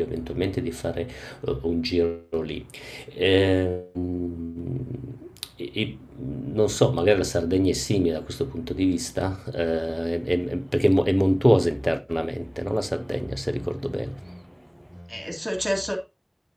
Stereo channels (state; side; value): identical; both; correlation 1.00